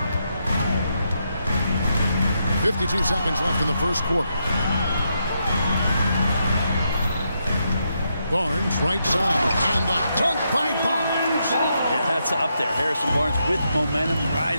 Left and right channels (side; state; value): both; inverted; correlation -0.81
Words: 52 seconds left in the first quarter. Barnes right side, and the dunk by Barnes. Yeah, that's up there. Harrison Barnes with momentum